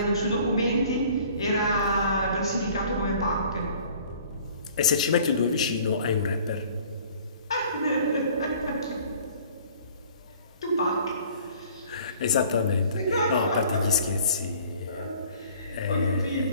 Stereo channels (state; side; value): inverted; both; correlation -0.52